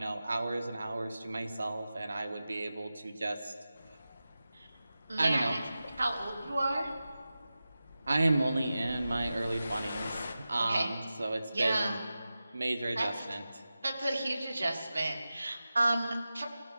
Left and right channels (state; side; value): inverted; both; correlation -0.94